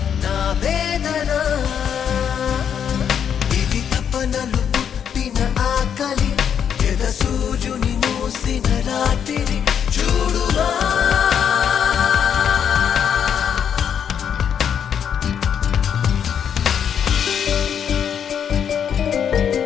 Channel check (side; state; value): right; quieter; 8.2 dB